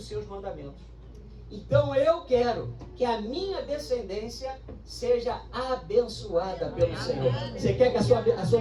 seus mandamentos. Então eu quero que a minha descendência seja abençoada pelo Senhor. Você quer que a sua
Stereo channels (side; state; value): both; identical; correlation 1.00